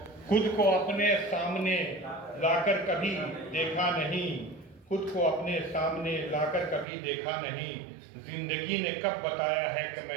खुद को अपने सामने लाकर कभी देखा नहीं, खुद को अपने सामने लाकर कभी देखा नहीं। जिंदगी ने कब बताया है कि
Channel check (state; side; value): drops out; left; at 6.9 s